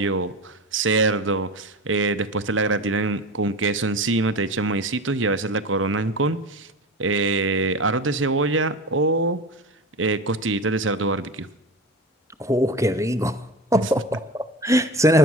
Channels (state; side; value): normal; both; correlation 0.28